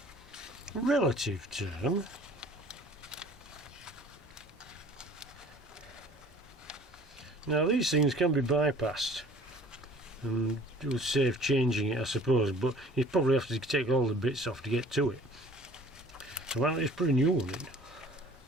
relative term. Now these things can be bypassed and it would save changing it, I suppose, but you probably have to take all the bits off to get to it. So why not just put a new one in?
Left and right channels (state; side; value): normal; both; correlation 0.50